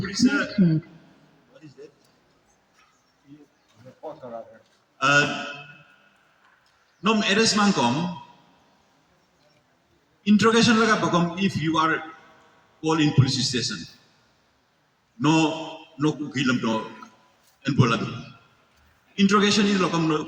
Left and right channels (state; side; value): identical; both; correlation 1.00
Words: connected. What is that? Nom eres mang kom. Interrogation laga bakom if you are called in police station. No ukilam no enbolado. Interrogation is lokam no